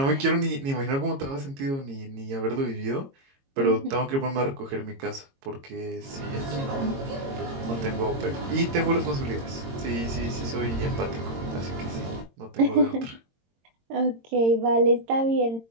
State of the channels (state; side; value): late; left; 22 ms